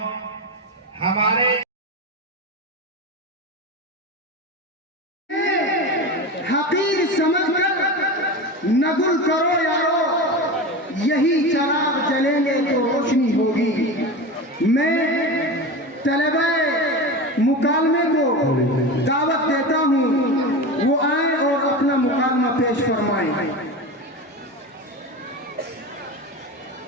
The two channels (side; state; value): both; normal; correlation 0.25